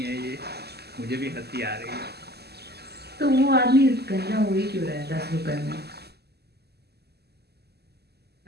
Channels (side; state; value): left; late; 0.47 ms